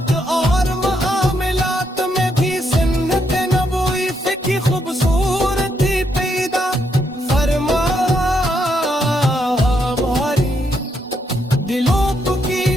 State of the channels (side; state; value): both; normal; correlation 0.77